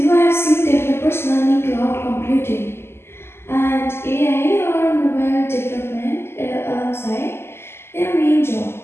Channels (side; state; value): right; late; 0.12 ms